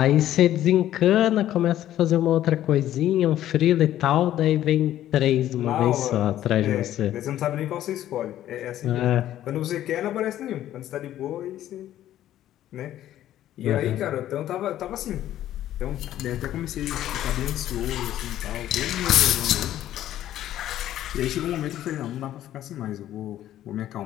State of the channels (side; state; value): right; quieter; 12.6 dB